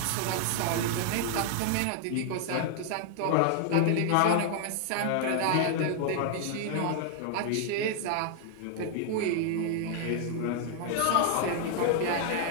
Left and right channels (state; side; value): different; both; correlation 0.00